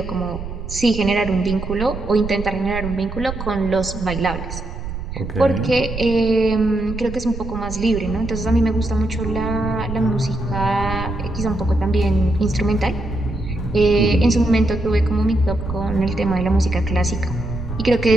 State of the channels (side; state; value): right; noise; rumble, 8 dB below the sound